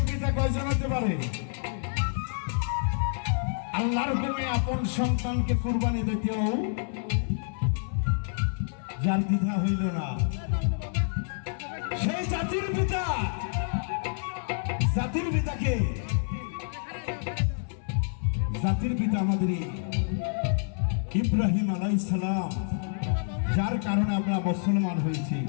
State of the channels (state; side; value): silent; right; 59 dB below the other